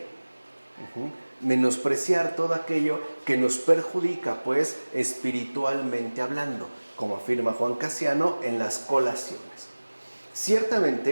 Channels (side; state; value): both; inverted; correlation -1.00